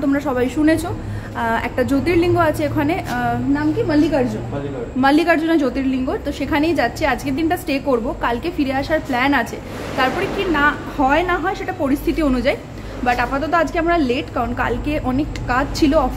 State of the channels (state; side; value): identical; both; correlation 1.00